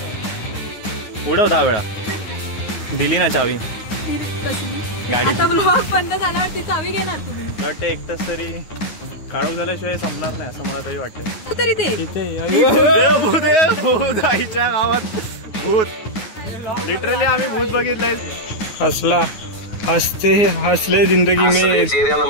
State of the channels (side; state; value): right; late; 9.5 ms